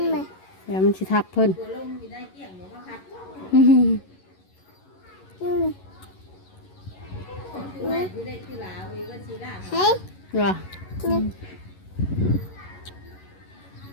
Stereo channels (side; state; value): right; late; 11 ms